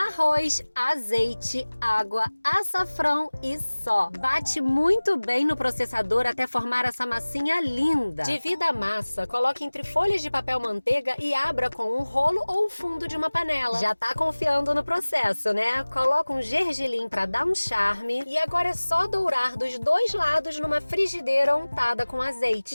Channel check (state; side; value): inverted; both; correlation -1.00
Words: azeite, água, açafrão e só. Bate muito bem no processador até formar essa massinha linda. Divida a massa, coloque entre folhas de papel manteiga e abra com um rolo ou o fundo de uma panela. Já tá confiando no processo, né? Coloca um gergelim pra dar um charme e agora é só dourar dos dois lados numa frigideira untada com azeite.